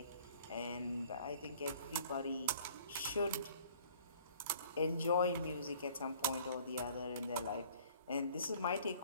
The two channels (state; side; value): inverted; both; correlation -0.54